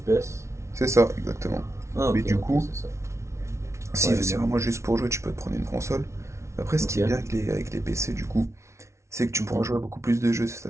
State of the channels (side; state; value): left; late; 0.13 ms